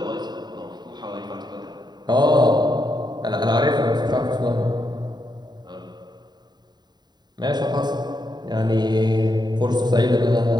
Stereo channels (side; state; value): left; late; 0.20 ms